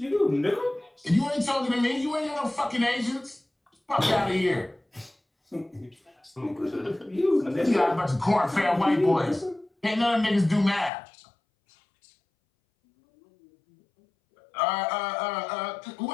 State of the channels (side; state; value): right; drops out; at 10.9 s